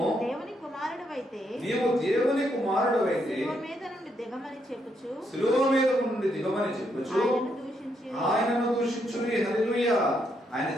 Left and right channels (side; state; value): both; normal; correlation 0.77